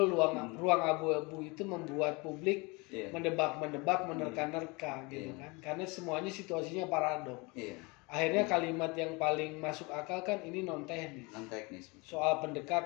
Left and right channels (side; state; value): right; quieter; 27.2 dB